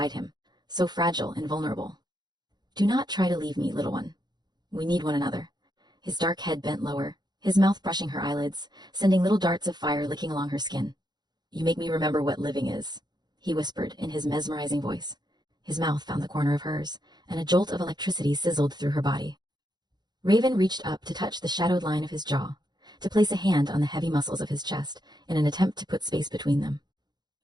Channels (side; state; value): left; late; 0.20 ms